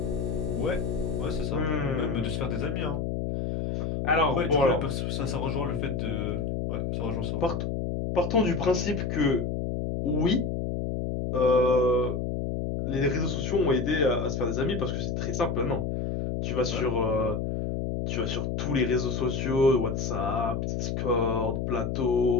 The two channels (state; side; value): noise; left; hum, 1 dB below the sound